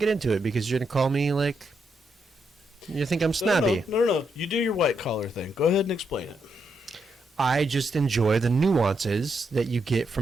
into it because you're going to call me like... You think I'm snobby. No. You do your white collar thing. Go ahead and explain it. I just enjoy the nuances that you get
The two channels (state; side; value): normal; both; correlation 0.80